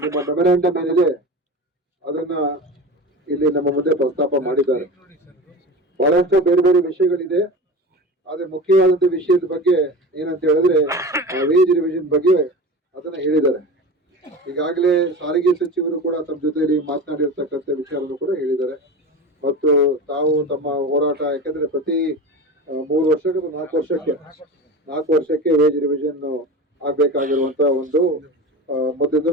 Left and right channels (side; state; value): both; normal; correlation 0.30